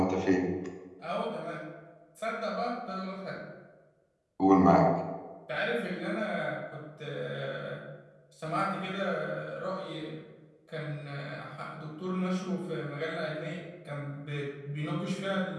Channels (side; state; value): both; identical; correlation 1.00